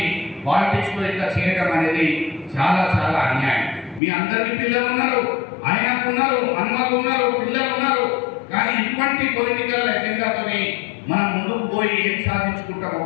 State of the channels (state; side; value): drops out; right; at 4.0 s